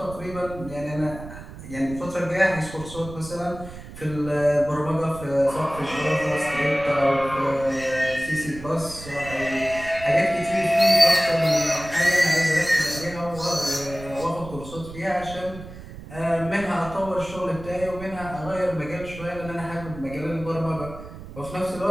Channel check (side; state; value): right; noise; rumble, 14 dB below the sound